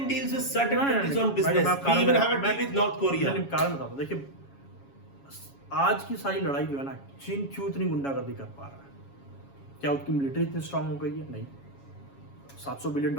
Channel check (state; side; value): late; right; 7.2 ms